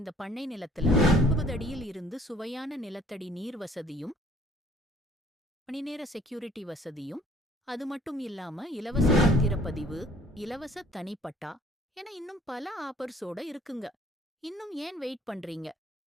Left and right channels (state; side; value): normal; both; correlation 0.56